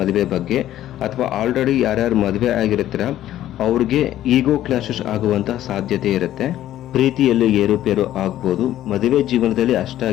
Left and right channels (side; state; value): right; quieter; 12.9 dB